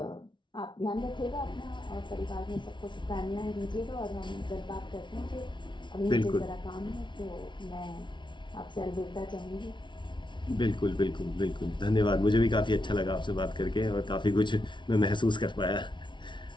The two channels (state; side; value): late; right; 0.23 ms